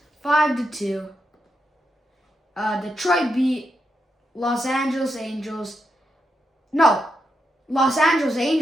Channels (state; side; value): normal; both; correlation 0.84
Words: 5-2. Detroit beat Los Angeles Angels